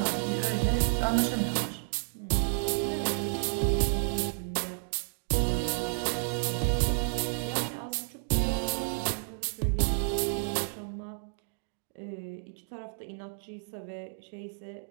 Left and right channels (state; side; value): silent; left; digital silence